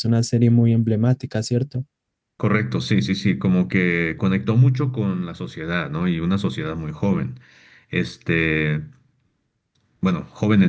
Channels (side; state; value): both; identical; correlation 1.00